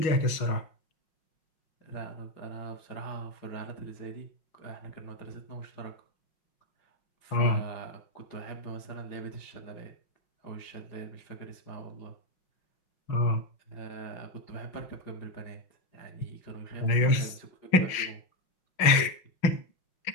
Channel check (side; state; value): right; late; 5.5 ms